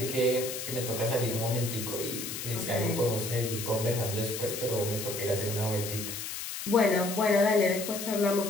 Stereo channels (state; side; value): noise; left; hiss, 6 dB below the sound